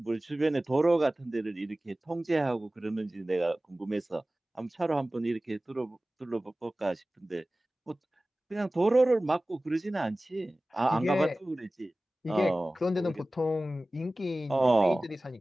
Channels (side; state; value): both; normal; correlation 0.97